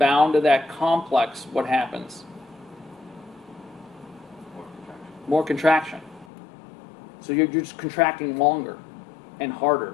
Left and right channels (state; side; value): drops out; right; at 6.2 s